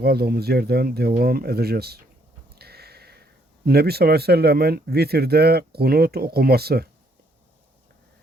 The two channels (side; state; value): both; normal; correlation 0.69